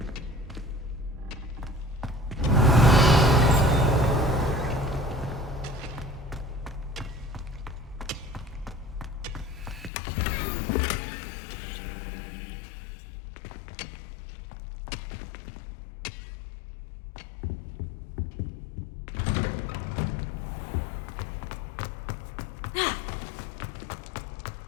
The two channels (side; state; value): right; drops out; at 9.9 s